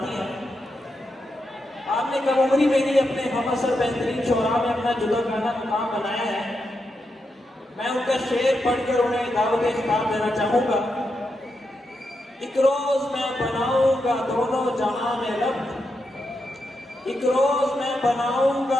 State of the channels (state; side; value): normal; both; correlation 0.85